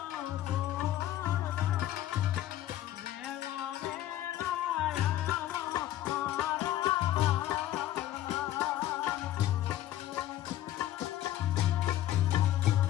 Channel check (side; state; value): right; quieter; 13.3 dB